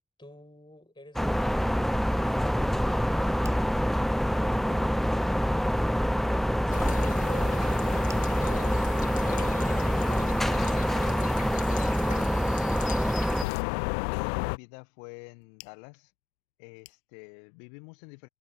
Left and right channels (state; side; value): drops out; right; at 13.5 s